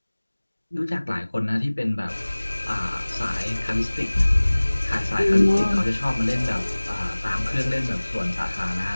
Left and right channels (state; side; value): inverted; both; correlation -1.00